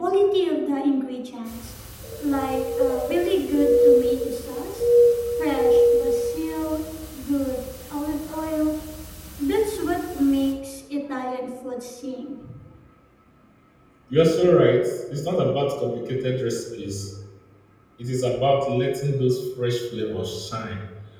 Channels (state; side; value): identical; both; correlation 1.00